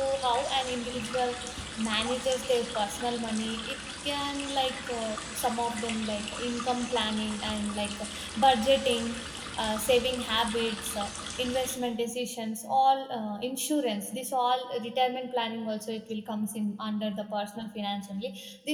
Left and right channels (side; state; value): both; identical; correlation 1.00